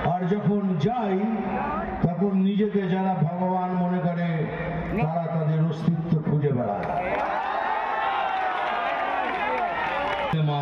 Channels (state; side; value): identical; both; correlation 1.00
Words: আর যখন যাই তখন নিজেকে যারা ভগবান মনে করে তারা তাদের অস্তিত্ব খুঁজে বেড়ায়।